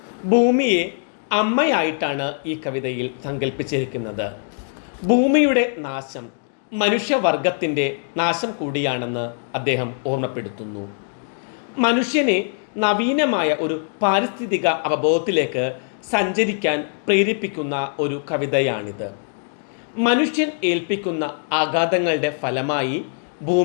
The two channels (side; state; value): right; silent; digital silence